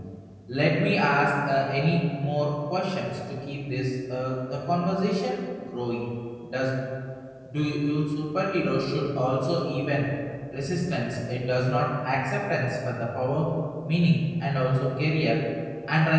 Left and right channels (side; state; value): both; identical; correlation 1.00